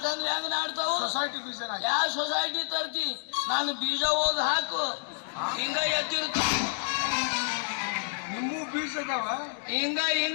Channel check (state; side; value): silent; right; digital silence